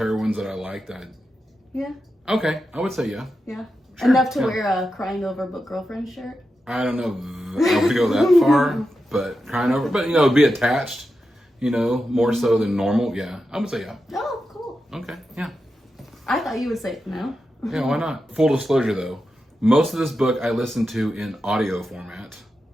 that I like that... yeah, Okay, I would say yeah. yeah, Sure, enough to yeah. wear a crying over book girlfriend shirt. I don't know if I would go that far, but crying over... But, be attached, more so than normal. Yeah, I would say yeah. Oh, cool. Okay, yeah. I thought you would say no. Yeah, why not? Full disclosure though, most of this book I listened to in audio format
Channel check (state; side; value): normal; both; correlation 0.89